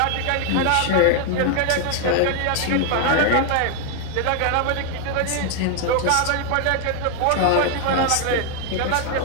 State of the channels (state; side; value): different; both; correlation 0.01